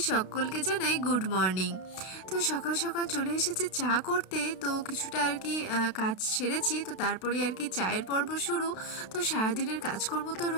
সকলকে জানাই গুড মর্নিং। তো সকাল সকাল চলে এসেছি চা করতে, তো কিছুটা আর কি কাজ সেরেছি, তো তারপরে আর কি চায়ের পর্ব শুরু। তো সারাদিনের কাজকর্ম তো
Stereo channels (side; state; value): right; late; 32 ms